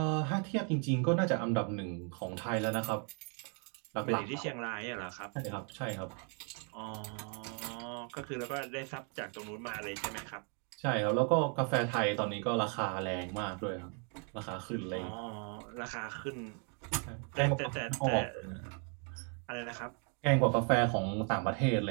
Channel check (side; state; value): left; quieter; 39.8 dB